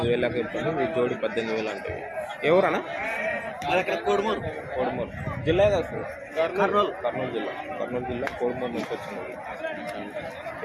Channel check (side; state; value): both; identical; correlation 1.00